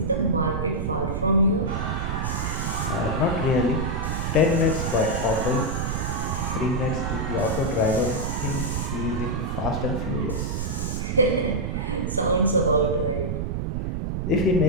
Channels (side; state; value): right; noise; rumble, 1 dB below the sound